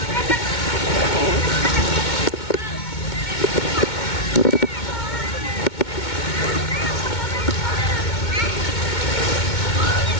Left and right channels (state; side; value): late; right; 2.2 ms